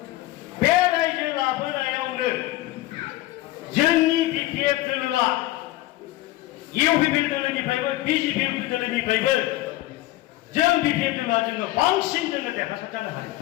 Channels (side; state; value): right; quieter; 17.1 dB